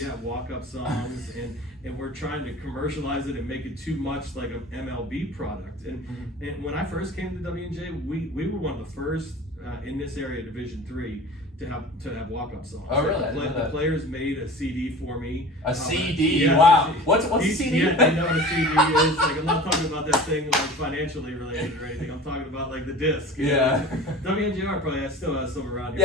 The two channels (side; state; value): both; normal; correlation 0.38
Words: Yeah, walk-up songs, and we're trying to commercialize it and make it too much like an MLB product. And when I first came to W&J, we were one of the first in this area, Division III, to have walk-up songs. Oh, really? The players made a CD for me. A CD? Yeah, wow. What's a CD? Yeah, they know what a CD is. Like, I'm not talking about that thing like financially related or anything. I'm talking about like the disc. Yeah. WNJR probably still has some around